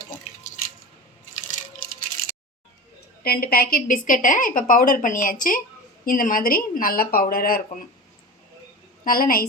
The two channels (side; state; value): both; normal; correlation 0.30